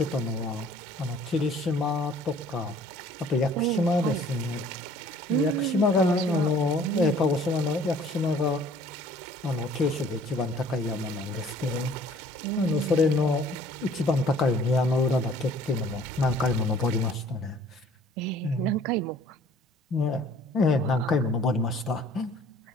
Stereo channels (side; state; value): both; normal; correlation 0.54